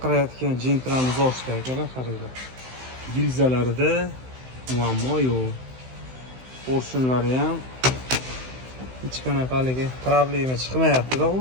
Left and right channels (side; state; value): left; late; 16 ms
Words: jentramiz ochdi akalar, qaranglar. Gilzalarida muammo yo'q. Porshunlari ham hech qanaqa haligi problema chiqmayapti-da,